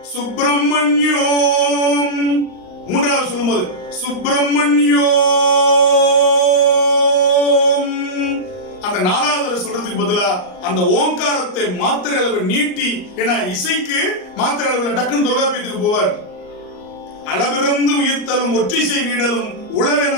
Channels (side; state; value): right; late; 38 ms